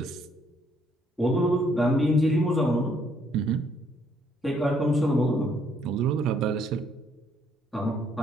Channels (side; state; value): both; normal; correlation 0.68